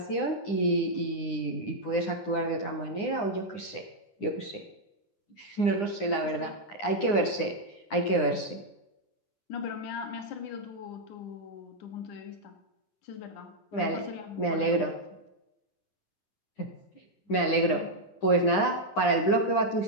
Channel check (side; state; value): right; late; 9.9 ms